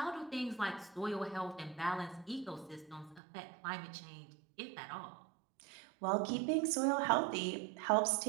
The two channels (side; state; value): left; drops out; at 3.2 s